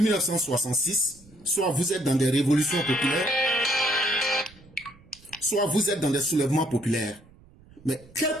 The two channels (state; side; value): noise; right; rumble, 25 dB below the sound